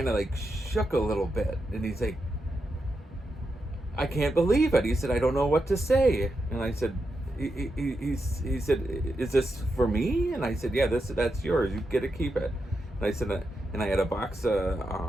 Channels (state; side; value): normal; both; correlation 0.86